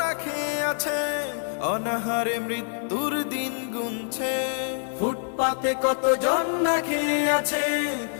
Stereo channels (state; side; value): silent; right; digital silence